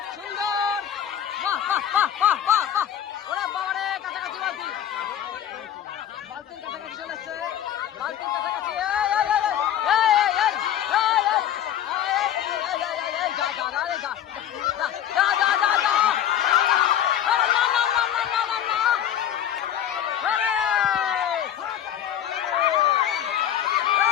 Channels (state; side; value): quieter; right; 10.5 dB